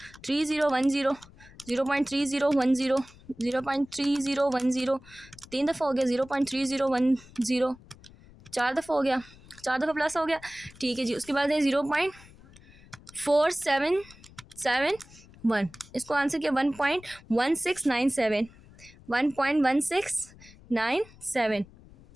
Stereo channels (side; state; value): left; noise; rumble, 23 dB below the sound